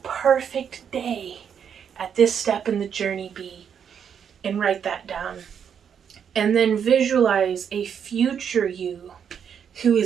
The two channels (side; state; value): left; quieter; 7.8 dB